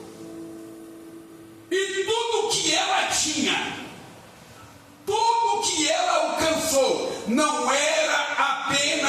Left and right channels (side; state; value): both; identical; correlation 1.00